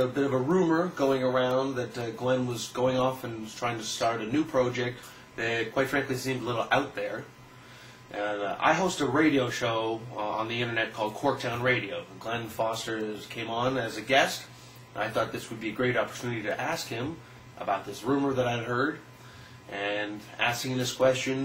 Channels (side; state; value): both; identical; correlation 1.00